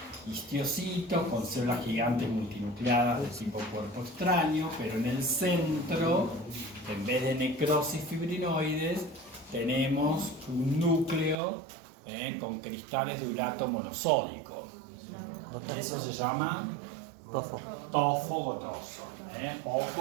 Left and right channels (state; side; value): drops out; left; at 11.4 s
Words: histiocitos con células gigantes multinucleadas de tipo cuerpo extraño, pero en el centro, en vez de necrosis fibrinoides, tenemos un núcleo con cristales de urato monosódico. Eso se llama tofo gotoso.